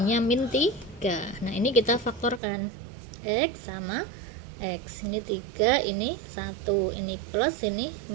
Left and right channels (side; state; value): left; drops out; at 2.4 s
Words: min 3. Nah ini kita faktorkan, X sama X, ini 3, ini 1, ini plus, ini